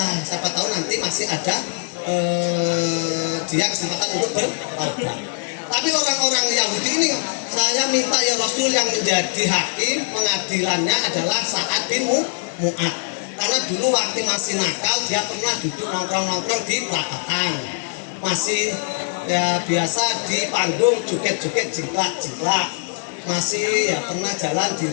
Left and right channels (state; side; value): silent; right; digital silence